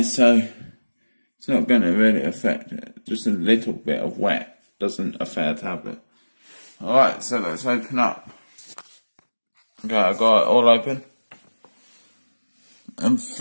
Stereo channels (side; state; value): both; inverted; correlation -1.00